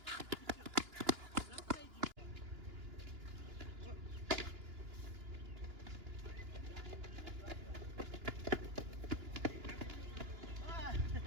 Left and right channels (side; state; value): left; late; 2.9 ms